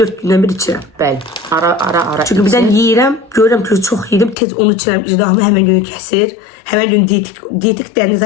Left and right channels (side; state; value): right; drops out; at 4.4 s